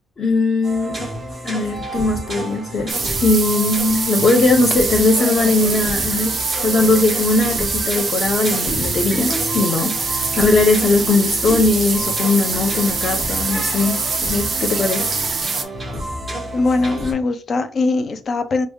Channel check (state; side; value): normal; both; correlation 0.72